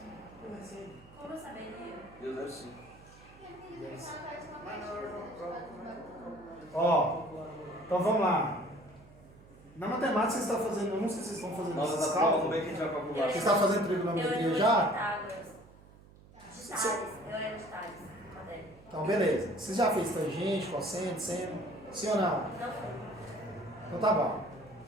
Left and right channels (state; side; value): noise; right; hum, 23 dB below the sound